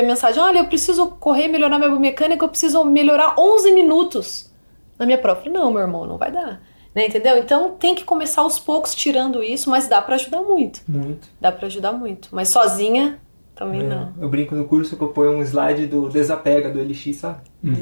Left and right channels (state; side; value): inverted; both; correlation -1.00